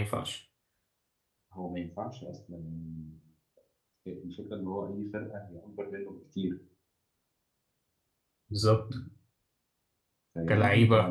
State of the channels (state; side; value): identical; both; correlation 1.00